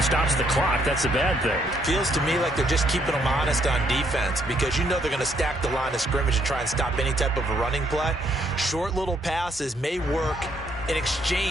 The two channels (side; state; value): both; normal; correlation 0.71